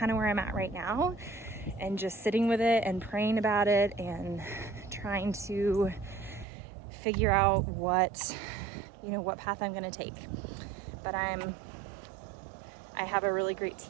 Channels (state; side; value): drops out; left; at 6.5 s